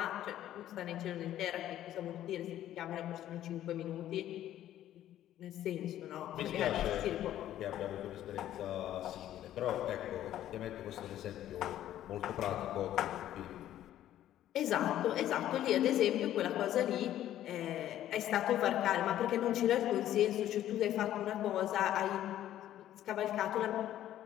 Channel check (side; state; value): right; quieter; 12.4 dB